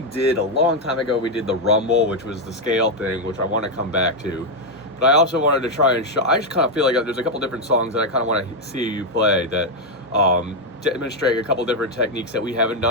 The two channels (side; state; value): both; normal; correlation 0.03